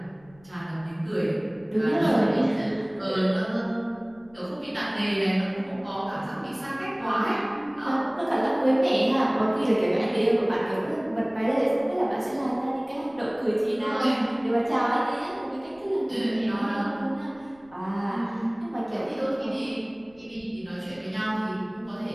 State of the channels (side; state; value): left; noise; rumble, 28 dB below the sound